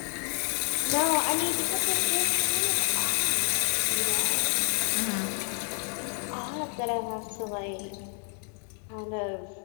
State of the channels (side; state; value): right; quieter; 33.0 dB